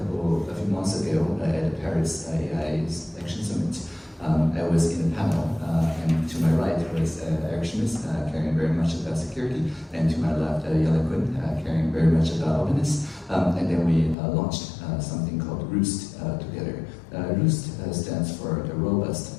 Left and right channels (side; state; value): right; drops out; at 14.2 s